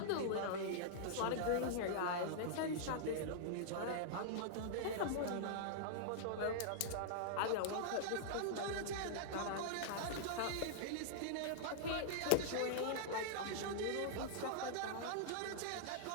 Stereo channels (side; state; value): both; different; correlation -0.02